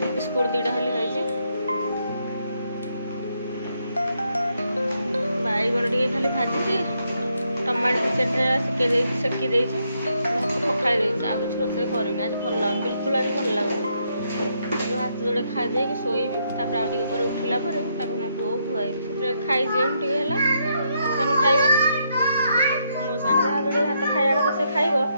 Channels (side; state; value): both; inverted; correlation -0.77